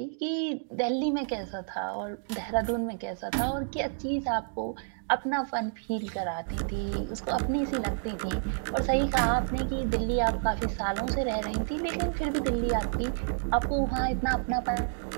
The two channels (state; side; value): silent; left; digital silence